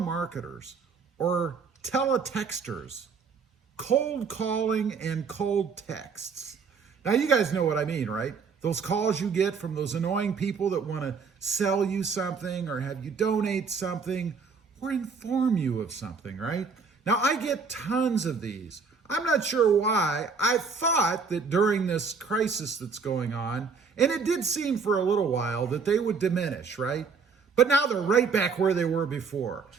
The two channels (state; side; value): quieter; left; 5.2 dB